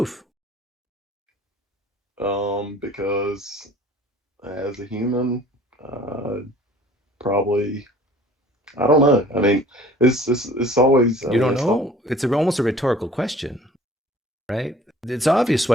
Because as a human, probably, I don't know. I mean, it's always. You don't know? It's almost a rhetorical question, right? It's obvious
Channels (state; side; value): normal; both; correlation 0.50